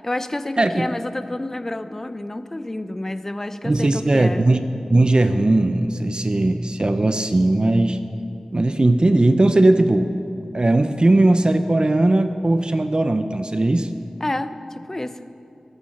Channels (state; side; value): normal; both; correlation 0.98